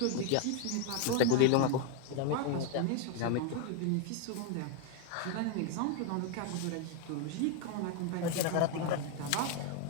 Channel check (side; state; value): both; different; correlation 0.01